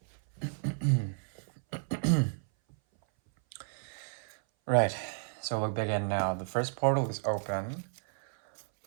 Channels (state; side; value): silent; left; 56 dB below the other